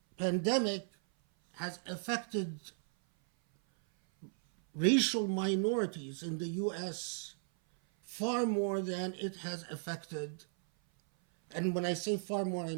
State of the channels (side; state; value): left; silent; 54 dB below the other